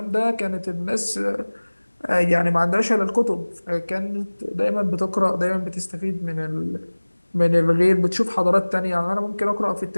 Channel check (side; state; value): both; inverted; correlation -1.00